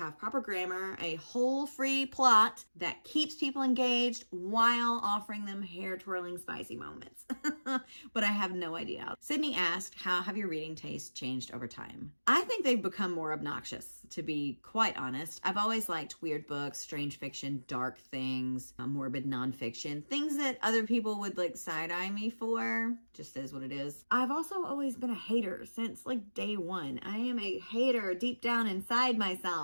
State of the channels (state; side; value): inverted; both; correlation -1.00